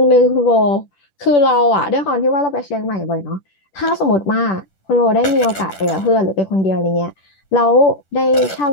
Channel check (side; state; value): right; late; 10 ms